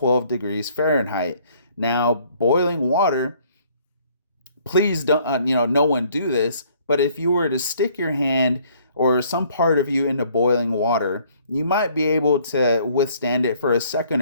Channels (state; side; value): inverted; both; correlation -0.61